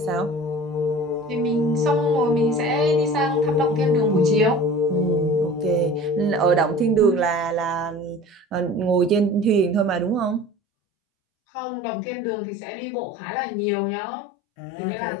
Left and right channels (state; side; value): drops out; right; at 10.5 s